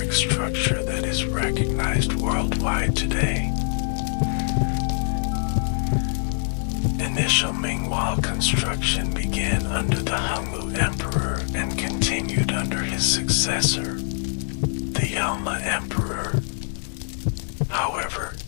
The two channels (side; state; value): right; silent; digital silence